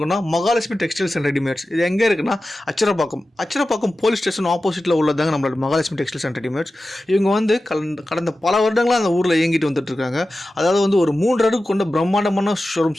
மகாலட்சுமி டெக்ஸ்டைல்ஸ் அண்ட் ரெடிமேட்ஸ். இது எங்கே இருக்குன்னா அச்சரப்பாக்கம் போலீஸ் ஸ்டேஷன் ஆப்போசிட்டில் உள்ளதாங்க நம்மளோட மகாலட்சுமி டெக்ஸ்டைல்ஸ் அண்ட் ரெடிமேட்ஸ். இவங்க வந்து கடந்த பல வருடங்களாக அந்த ஊரில் இயங்கிட்டு வந்துட்டு இருக்காங்க. அதாவது வந்து ஒரு 3 அடுக்கு கொண்ட பிரம்மாண்டமான ஷோரூம்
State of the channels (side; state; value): both; normal; correlation 0.94